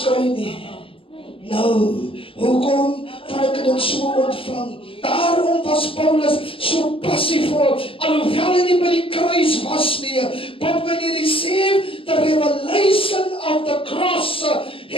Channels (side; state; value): right; late; 0.26 ms